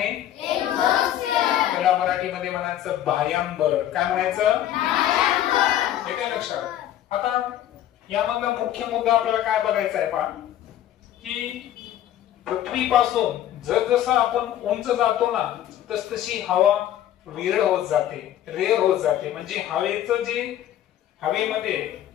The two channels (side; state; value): right; quieter; 11.9 dB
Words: त्याला मराठीमध्ये म्हणायचं बाह्यांबर. काय म्हणायचं? हे काय लक्षात? आता यामधला मुख्य मुद्दा आपल्याला काय बघायचा आहे पहा, की पृथ्वीपासून जसजसं आपण उंच जातो ना तसतशी हवा विरळ होत जाते, रेअर होत जाते. म्हणजे हवेचं जे हवेमध्ये